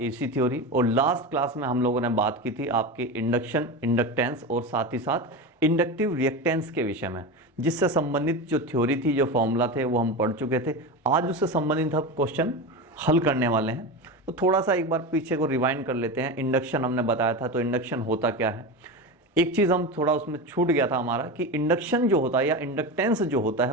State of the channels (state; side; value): normal; both; correlation 0.22